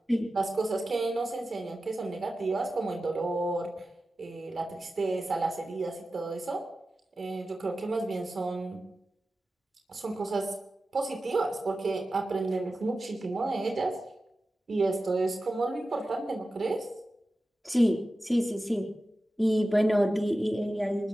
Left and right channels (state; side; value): normal; both; correlation 0.94